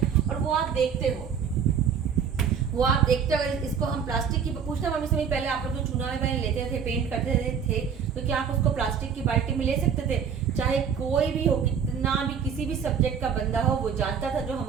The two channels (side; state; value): left; quieter; 7.1 dB